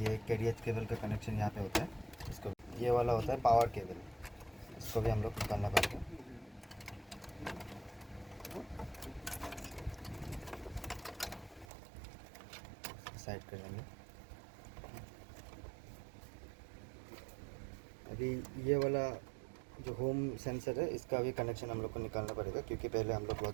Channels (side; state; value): left; drops out; at 11.7 s